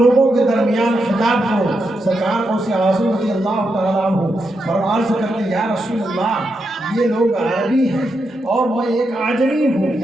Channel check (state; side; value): normal; both; correlation 0.84